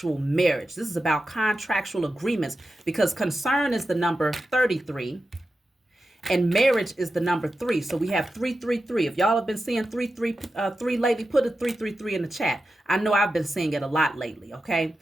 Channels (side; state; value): both; normal; correlation 0.91